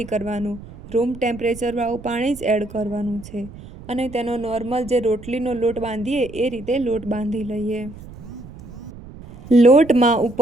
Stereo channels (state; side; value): noise; right; rumble, 16 dB below the sound